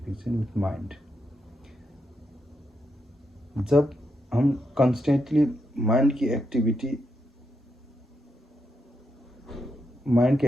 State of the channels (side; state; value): both; normal; correlation 0.82